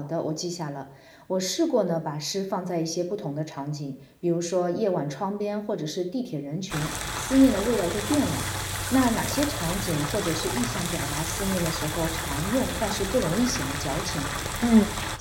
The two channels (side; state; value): both; identical; correlation 1.00